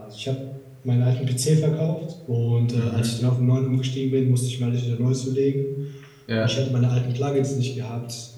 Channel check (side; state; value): both; identical; correlation 1.00